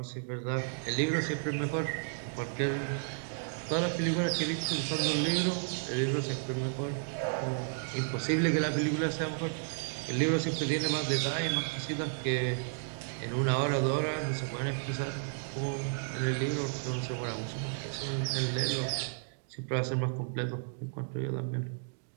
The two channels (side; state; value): left; silent; digital silence